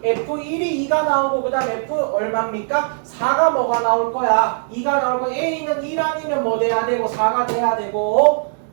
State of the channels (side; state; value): left; silent; digital silence